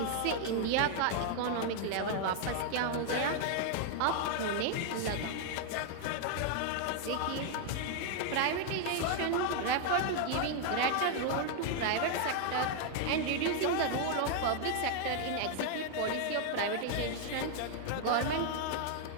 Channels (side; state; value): both; different; correlation 0.00